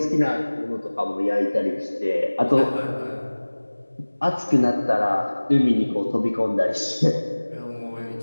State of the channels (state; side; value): inverted; both; correlation -1.00